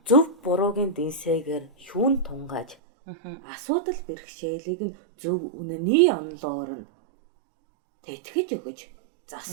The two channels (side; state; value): left; drops out; at 2.8 s